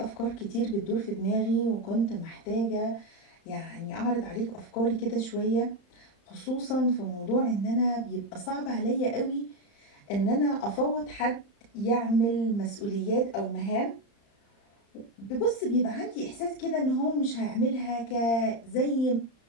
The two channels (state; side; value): late; right; 35 ms